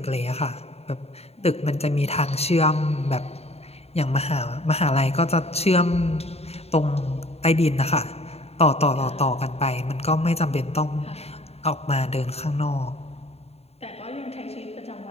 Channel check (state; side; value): late; right; 0.30 ms